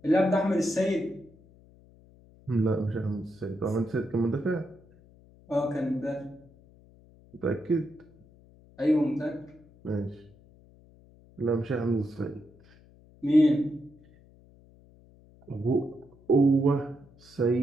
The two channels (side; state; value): left; noise; hum, 26 dB below the sound